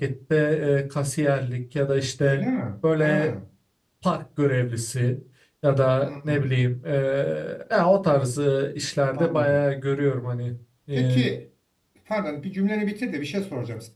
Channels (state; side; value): identical; both; correlation 1.00